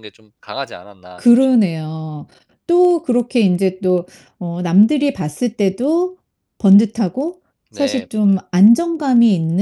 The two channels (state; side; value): identical; both; correlation 1.00